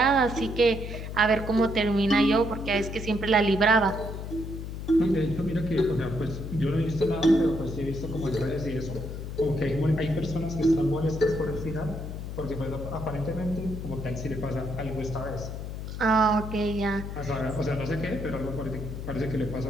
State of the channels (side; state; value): left; noise; hum, 7 dB below the sound